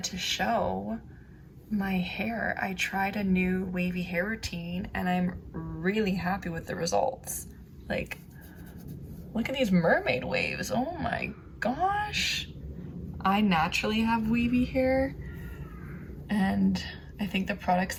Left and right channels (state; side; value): identical; both; correlation 1.00